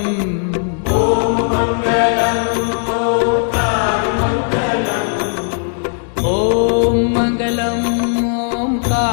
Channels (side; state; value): right; silent; 63 dB below the other